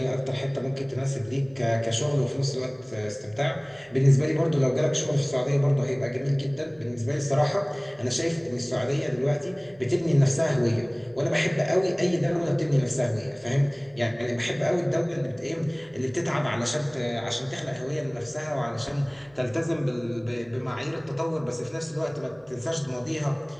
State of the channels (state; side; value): noise; right; hum, 29 dB below the sound